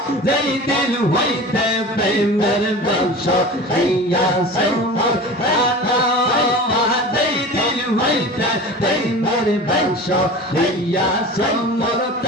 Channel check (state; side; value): normal; both; correlation 0.35